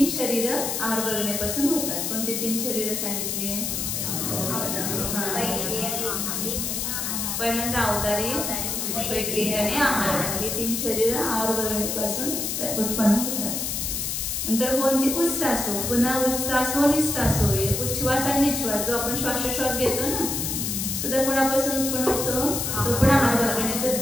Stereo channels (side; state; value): left; noise; hiss, 2 dB below the sound